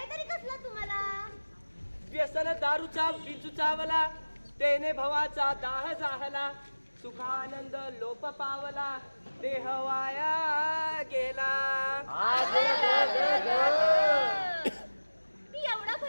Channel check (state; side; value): inverted; both; correlation -1.00